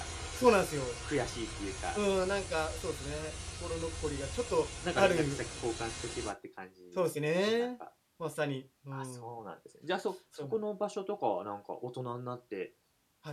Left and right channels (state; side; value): identical; both; correlation 1.00